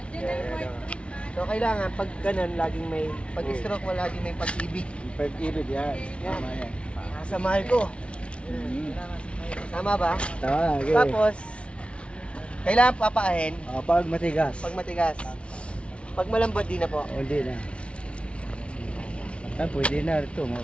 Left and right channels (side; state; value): right; late; 0.060 ms